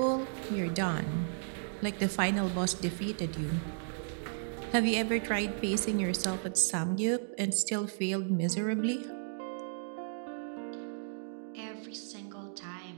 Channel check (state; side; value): silent; left; digital silence